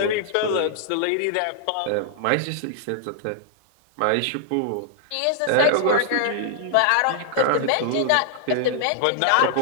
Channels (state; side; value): different; both; correlation 0.00